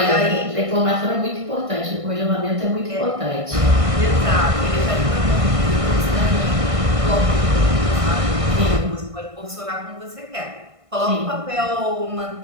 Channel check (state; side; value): late; left; 1.6 ms